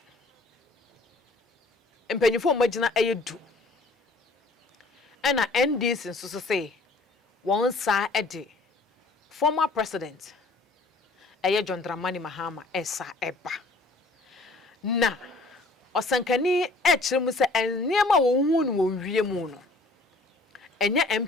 empanyifo magina ayedu ena NDC nso say one sa ede former president John Dramani Mahama esa eba na osankani kire mu say enema wo hu no wo wie mu no enye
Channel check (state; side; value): quieter; right; 3.1 dB